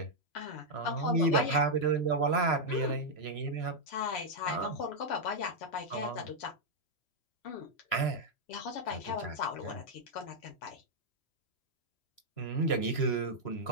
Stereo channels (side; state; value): right; late; 3.1 ms